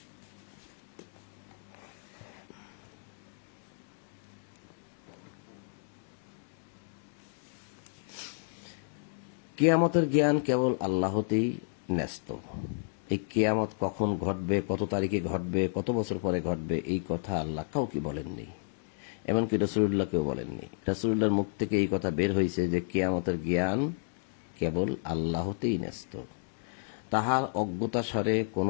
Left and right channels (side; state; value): right; silent; digital silence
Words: কিয়ামতের জ্ঞান কেবল আল্লাহতেই ন্যস্ত। এই কিয়ামত কখন ঘটবে, কত তারিখে ঘটবে, কত বছর পরে ঘটবে, এই কথা আল্লাহ কাউকে বলেননি, এমনকি রাসূলুল্লাহকেও বলেননি। রাসূলুল্লাহর মুখ থেকে এই কথা বের হয়েছে যে কিয়ামতের জ্ঞান কেবল আল্লাহতেই ন্যস্ত। তাহার অজ্ঞতাসারে